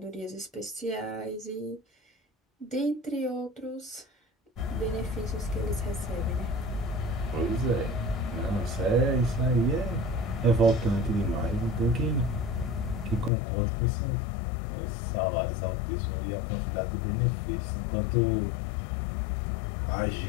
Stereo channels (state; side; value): drops out; right; at 13.3 s